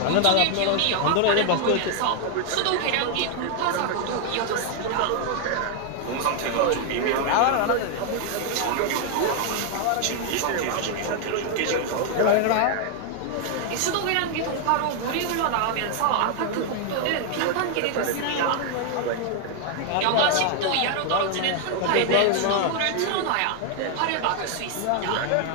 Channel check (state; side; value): different; both; correlation 0.00